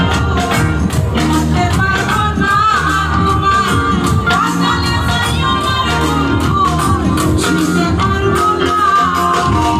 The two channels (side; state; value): both; identical; correlation 1.00